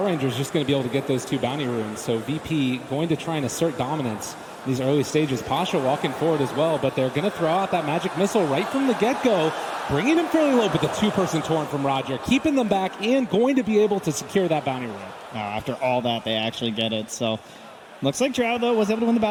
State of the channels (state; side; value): identical; both; correlation 1.00